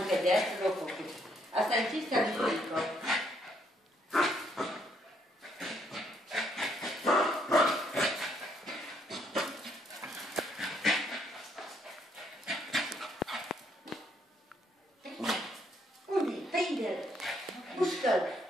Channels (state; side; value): normal; both; correlation 0.70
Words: de asta l-au făcut. Asta e cinstea lui Iulico. Unde? Prinde-l! Mușcă-l!